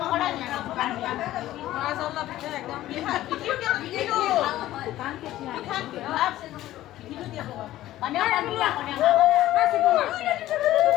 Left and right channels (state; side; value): quieter; right; 14.6 dB